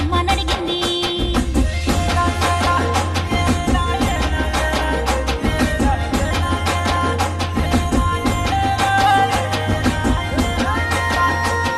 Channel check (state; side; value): identical; both; correlation 1.00